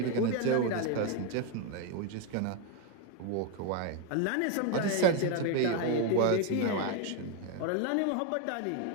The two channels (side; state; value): both; different; correlation 0.01